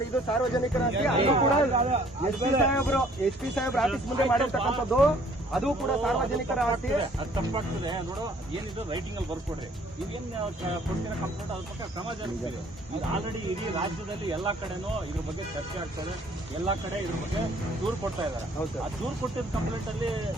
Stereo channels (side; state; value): both; normal; correlation 0.58